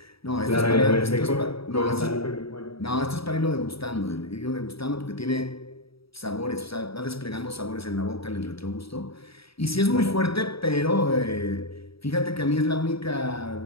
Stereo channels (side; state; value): right; late; 0.76 ms